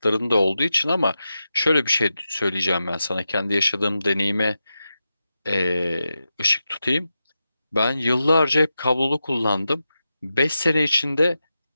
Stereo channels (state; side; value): inverted; both; correlation -0.90